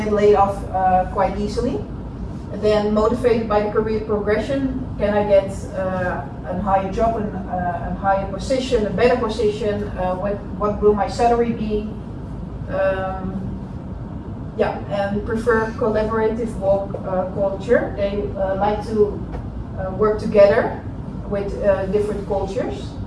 laid off quite easily? And then motivated by the career progression, can I get a higher job, a higher position, a better position? What will my salary be? And prefer collaborative work culture. They like to work together with different cultures.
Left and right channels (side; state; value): both; identical; correlation 1.00